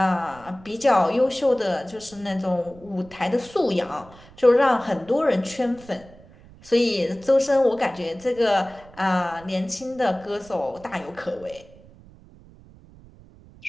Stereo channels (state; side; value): noise; right; rumble, 23 dB below the sound